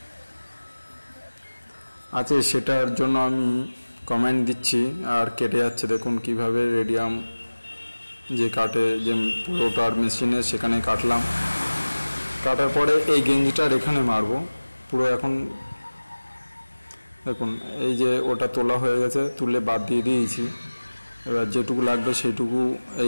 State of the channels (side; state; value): both; inverted; correlation -1.00